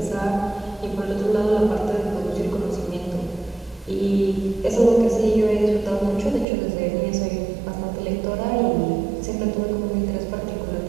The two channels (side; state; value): left; drops out; at 6.5 s